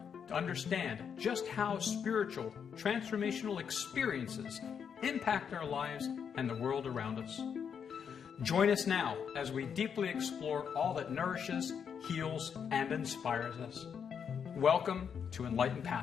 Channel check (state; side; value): quieter; right; 7.3 dB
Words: to understand just how spiritual, transformational experiences impact our lives and the world around us. Join us now as we deeply explore all that nourishes, heals, and inspires us. Welcome to Enlightened